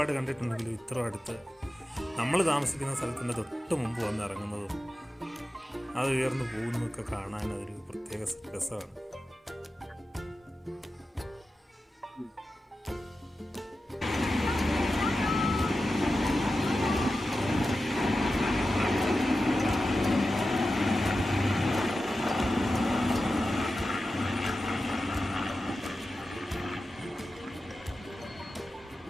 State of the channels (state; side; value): normal; both; correlation 0.92